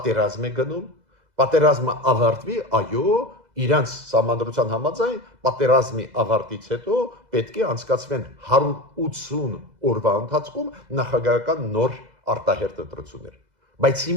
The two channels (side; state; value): left; late; 2.0 ms